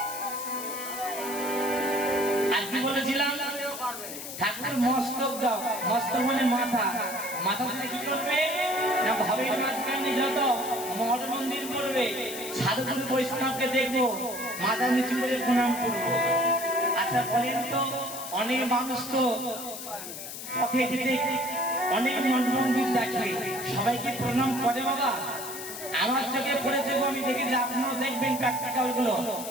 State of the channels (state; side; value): noise; left; hiss, 9 dB below the sound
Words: আর কি বলেছিলাম? ঠাকুর মস্তক দাও। মস্তক মানে মাথা। মাথা থেকে কি করবে না? ভবের মাঝখানে যত মঠ মন্দির করবে, সাধুগুরু বৈষ্ণবকে দেখবো, মাথা নিচু করে প্রণাম করবো। আচ্ছা বলেন তো, অনেক মানুষ তো পথে যেতে অনেক মঠ মন্দির দেখে, সবাইকে প্রণাম করে বাবা? আমার চোখে পড়েছে, আমি দেখেছি, আপনারাও দেখবেন প্র্যাকটিক্যাল গুলো।